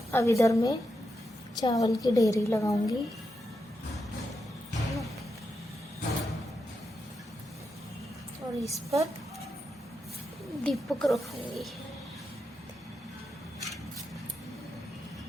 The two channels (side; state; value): both; normal; correlation 0.86